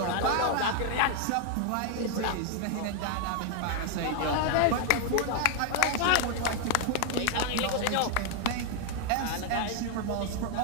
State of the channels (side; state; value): both; different; correlation 0.00